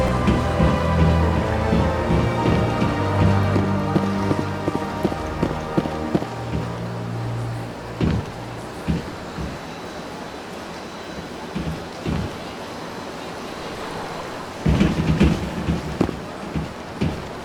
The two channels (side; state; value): both; identical; correlation 1.00